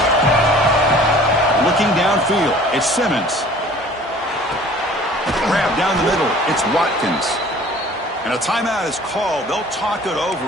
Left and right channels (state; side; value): normal; both; correlation 0.49